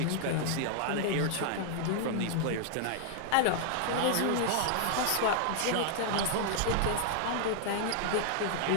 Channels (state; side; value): different; both; correlation 0.00